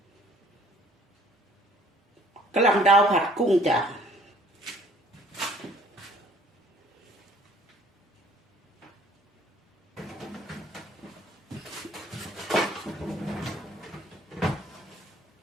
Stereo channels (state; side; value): normal; both; correlation 0.57